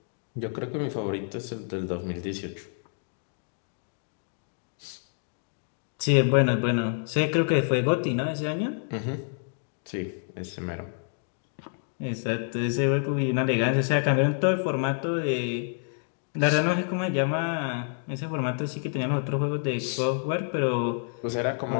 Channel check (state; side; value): silent; right; 59 dB below the other